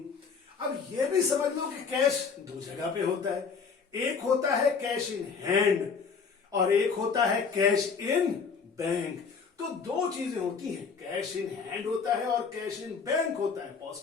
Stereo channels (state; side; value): quieter; right; 5.6 dB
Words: अब यह भी समझ लो कि कैश दो जगह पे होता है, एक होता है कैश इन हैंड और एक होता है कैश इन बैंक। तो दो चीजें होती हैं, कैश इन हैंड होता है और कैश इन बैंक होता है। पॉज